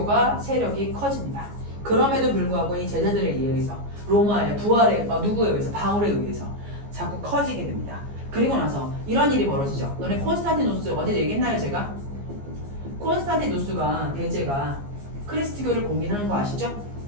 세력이 커집니다. 그럼에도 불구하고 이 제자들에 의해서 로마의 부활에 누구에 의해서? 바울에 의해서 자꾸 커지게 됩니다. 그리고 나서 이런 일이 벌어지죠. 너네 콘스탄티누스 어제 얘기했나요 제가? 콘스탄티누스가 대제가 그리스도교를 공인하는 거 아시죠?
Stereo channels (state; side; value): late; left; 14 ms